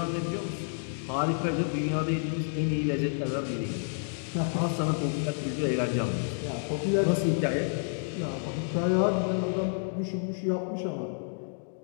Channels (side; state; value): right; silent; digital silence